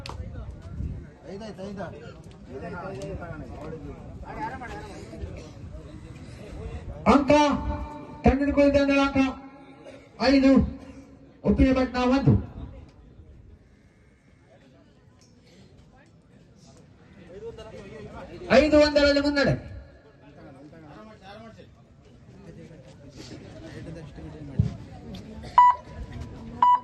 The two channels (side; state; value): both; identical; correlation 1.00